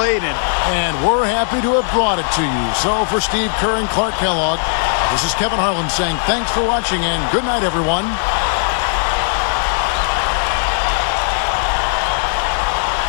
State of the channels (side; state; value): right; silent; 68 dB below the other